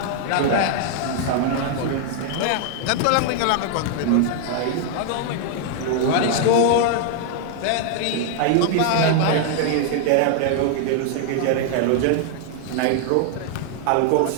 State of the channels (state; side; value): different; both; correlation 0.00